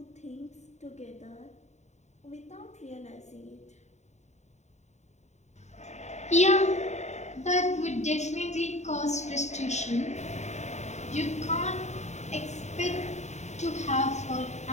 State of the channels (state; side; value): late; right; 0.33 ms